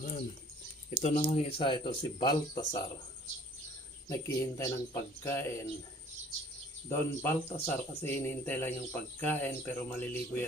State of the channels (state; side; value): normal; both; correlation 0.54